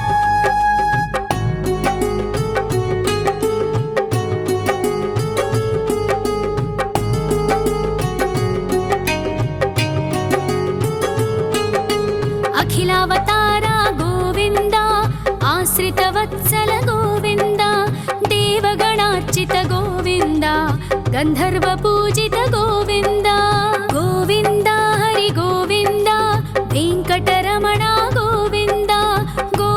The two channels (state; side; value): identical; both; correlation 1.00